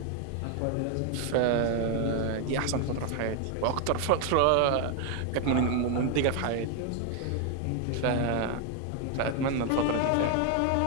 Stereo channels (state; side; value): different; both; correlation 0.01